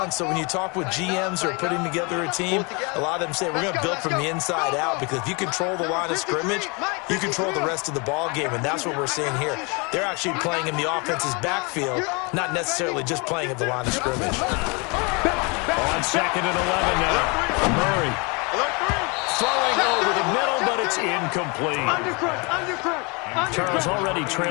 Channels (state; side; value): quieter; right; 30.3 dB